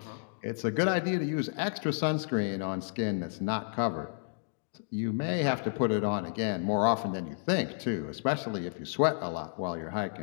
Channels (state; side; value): silent; right; digital silence